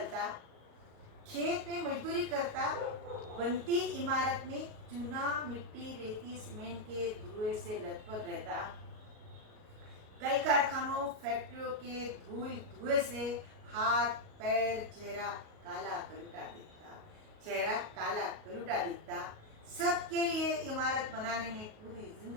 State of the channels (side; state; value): left; late; 38 ms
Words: खेत में मजदूरी करता, बनती इमारत में चूना मिट्टी रेती सीमेंट के धुएं से लथपथ रहता। कल कारखानों फैक्ट्रियों के धुएं से हाथ पैर चेहरा काला कलूटा दिखता, चेहरा काला कलूटा दिखता। सबके लिए इमारत बनाने में पूरी